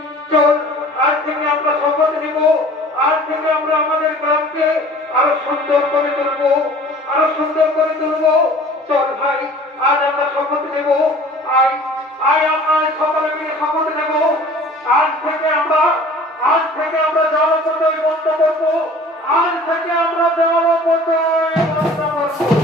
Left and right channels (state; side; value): normal; both; correlation 0.47